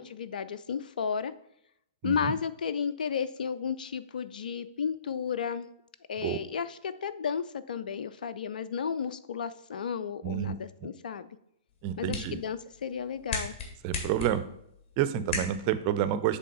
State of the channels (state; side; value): inverted; both; correlation -0.35